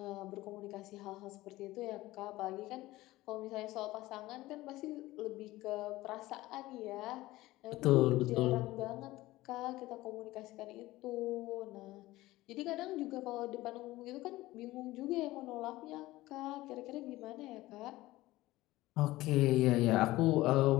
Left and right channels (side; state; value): right; quieter; 17.9 dB